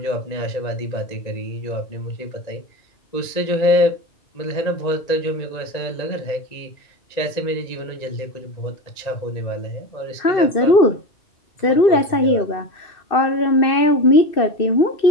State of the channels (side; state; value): right; late; 2.6 ms